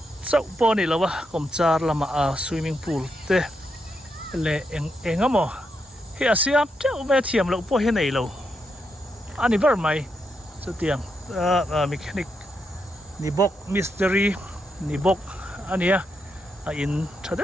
chau po ni lawa kom char lama swimming pool te le engamo hi asiam chau me thiam lo po he nei lo ani ber mai chu tiang mechanic ni bok mystery ni bok ania in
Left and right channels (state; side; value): normal; both; correlation 0.82